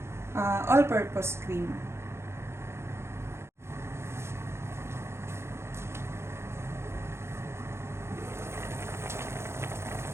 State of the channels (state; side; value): late; left; 0.13 ms